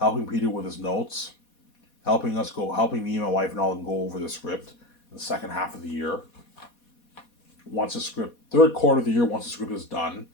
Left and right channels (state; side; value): late; right; 4.2 ms